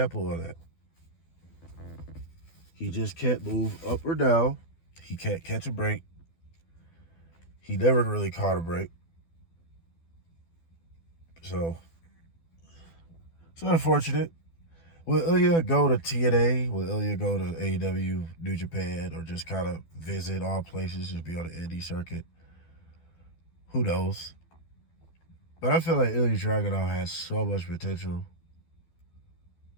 of that. He just can't move up or down. He can't catch a break. He never really caught a break. So it's unfortunate. Will Ilja go to TNA? Will Ilja go to AEW, New Japan, or just kind of visit all places, just be on the indie circuit? Who knows? But I feel like Ilja Dragunov has so much potential.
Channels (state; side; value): late; right; 12 ms